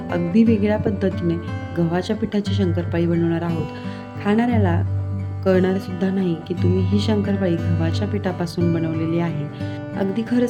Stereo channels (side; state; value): both; identical; correlation 1.00